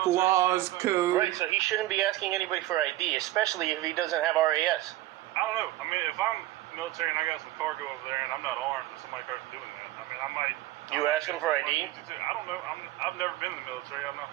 laws, be, code. right, so he shouldn't be asking anybody for ID, especially if he doesn't have RAS. I don't know. I mean, if I'm military and I got some cargo over there and I'm not armed and somebody starts doing that, I mean, I might. You ask him for ID? I don't know. I've never been in the military. I'm not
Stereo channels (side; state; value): left; quieter; 15.8 dB